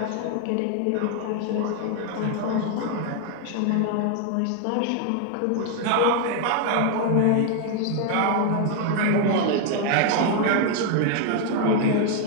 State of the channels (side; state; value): both; different; correlation 0.00